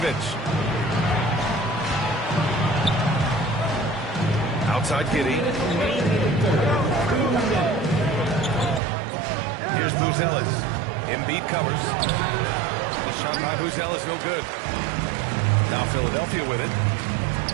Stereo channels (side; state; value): left; drops out; at 8.8 s